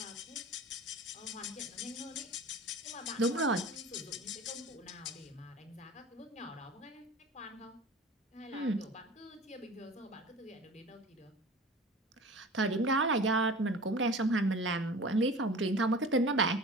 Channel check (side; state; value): both; normal; correlation 0.38